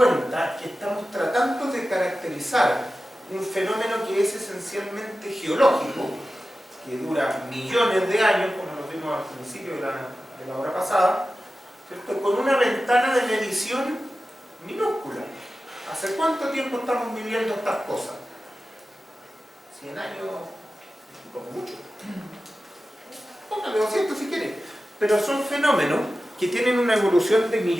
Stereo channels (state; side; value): normal; both; correlation 0.94